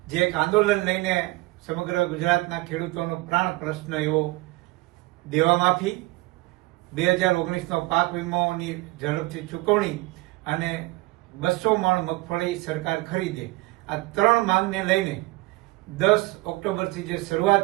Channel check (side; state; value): left; quieter; 21.6 dB